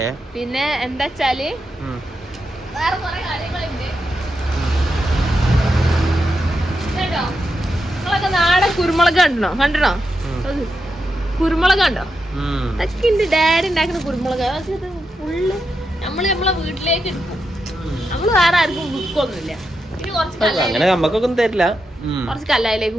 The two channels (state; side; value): normal; both; correlation 0.86